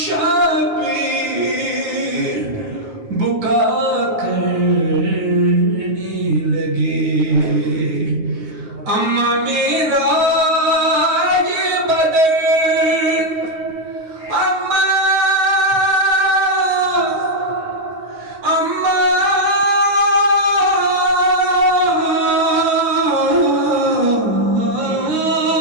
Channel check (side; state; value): left; late; 9.4 ms